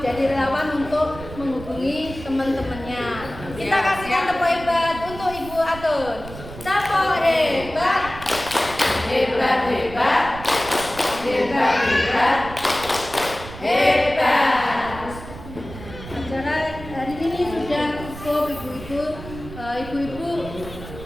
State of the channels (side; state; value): right; noise; rumble, 13 dB below the sound